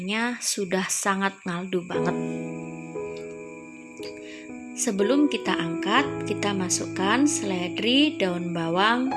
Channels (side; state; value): both; identical; correlation 1.00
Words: sudah sangat ngaldu banget. Sebelum kita angkat, kita masukkan seledri, daun bawang,